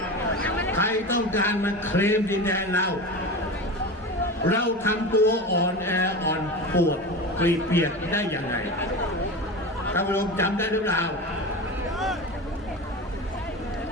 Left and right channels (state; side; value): normal; both; correlation 0.27